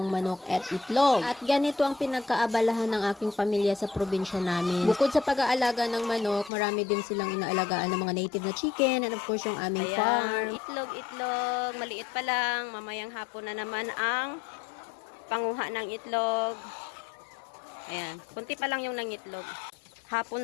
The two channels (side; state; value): right; drops out; at 6.5 s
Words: manok at itlog. At ganito ang pinagkaabalahan ng aking pamilya sa probinsya namin. Bukod sa pag-aalaga ng manok, marami din silang inaalagaan ng mga native na chicken and of course yung aming farm. Itlog, maliit pa lang. Mamayang hapon na naman ang panguha ng itlog. Ayan, kunti pa lang yung nangitlog.